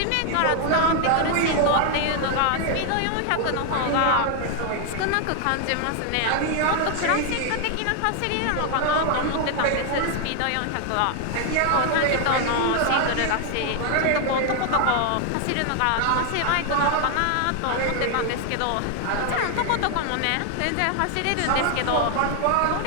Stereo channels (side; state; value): both; different; correlation 0.00